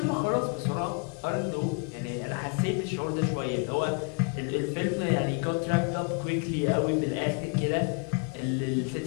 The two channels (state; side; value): quieter; right; 36.9 dB